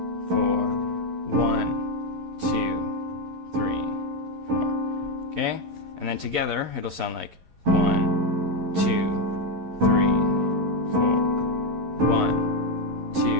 4, 1, 2, 3, 4. Okay? And then together it'll sound like 1, 2, 3, 4. 1, 2,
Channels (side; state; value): left; late; 11 ms